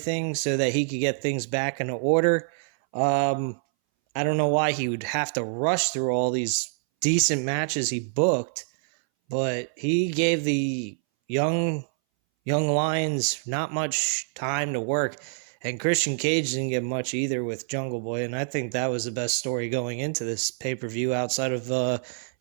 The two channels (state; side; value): silent; left; 61 dB below the other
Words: so that he could get things back in order. I don't know why he would have to rush through all these decent matches he booked, but he gave the young lions, not much time to work. And Christian Cage didn't get much either with Jungle Boy, and I think that was the best story going into this pay-per-view outside of